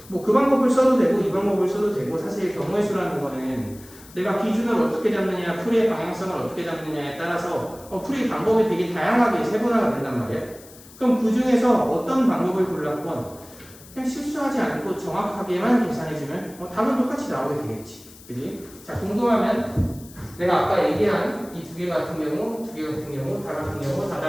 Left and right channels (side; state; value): left; noise; hiss, 21 dB below the sound